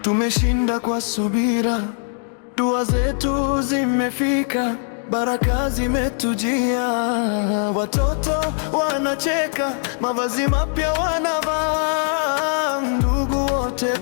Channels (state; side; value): silent; right; 65 dB below the other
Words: Tumeshinda kwa subira, dua zetu zimefika, baraka zimetujia. Watoto wanacheka, mavazi mapya wanavaa, ndugu wote